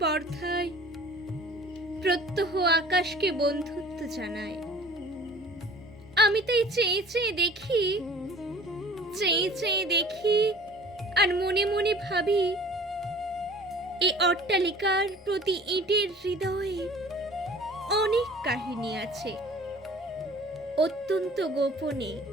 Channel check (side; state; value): both; normal; correlation 0.47